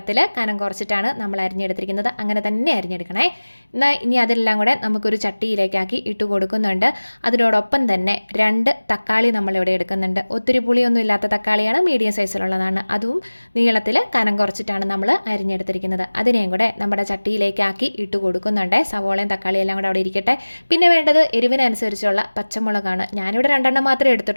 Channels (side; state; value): both; inverted; correlation -1.00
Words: കനം കുറച്ചിട്ടാണ് നമ്മൾ അരിഞ്ഞെടുത്തിരിക്കുന്നത്. അങ്ങനെ തന്നെ അരിഞ്ഞെടുക്കണേ. എന്നാൽ ഇനി അതെല്ലാം കൂടെ നമുക്കൊരു ചട്ടിയിലേക്കാക്കി ഇട്ട് കൊടുക്കുന്നുണ്ട്. അതിനോടൊപ്പം തന്നെ 2 തക്കാളി നമ്മളിവിടെ എടുക്കുന്നുണ്ട്. ഒത്തിരി പുളിയൊന്നും ഇല്ലാത്ത തക്കാളി, മീഡിയം സൈസിലുള്ളതാണ്. അതും നീളത്തിൽ കനം കുറച്ചിട്ടാണ് നമ്മൾ അരിഞ്ഞെടുത്തിരിക്കുന്നത്. അതിനെയും കൂടെ നമ്മുടെ ചട്ടിയിലേക്കാക്കി ഇട്ട് കൊടുക്കുന്നുണ്ട്. സവോളയും തക്കാളിയും എല്ലാം കൂടെ അവിടെ ഇരിക്കട്ടെ. പിന്നെ വേണ്ടത് എരിവിനനുസരിച്ചുള്ള പച്ചമുളകാണ്. ഞാനിവിടെ 2 മാത്രമേ